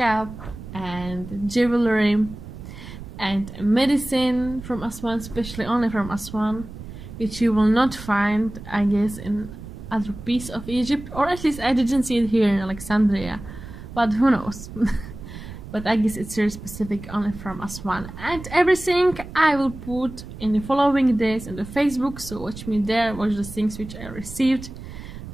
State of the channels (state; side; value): noise; right; rumble, 13 dB below the sound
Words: and jewelry, and a medicine from Aswan, especially only from Aswan, which you will not find, I guess, in other piece of Egypt, or at least I didn't see it here in Alexandria, but who knows. But I guess it's very specific only from Aswan. And everything I will put in the following days on the Facebook, so watch me there, watch the things which I received,